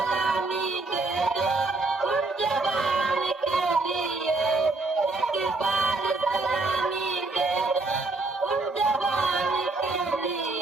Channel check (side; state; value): left; quieter; 3.4 dB